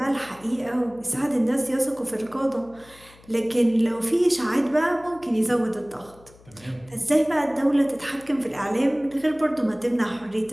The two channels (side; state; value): left; noise; hum, 25 dB below the sound